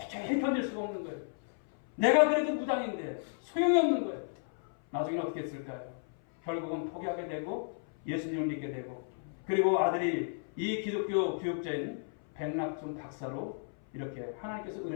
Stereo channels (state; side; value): silent; right; 56 dB below the other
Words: 견딜 수가 없는 거예요. 내가 그래도 무당인데 소용이 없는 거예요. 나중에 어떻게 했을까요? 결국은 포기하게 되고 예수님을 믿게 되고, 그리고 아들이 이 기독교 교육자인 백낙준 박사로 이렇게 하나님께서